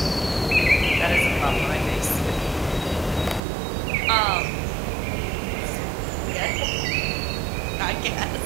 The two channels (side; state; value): left; drops out; at 3.4 s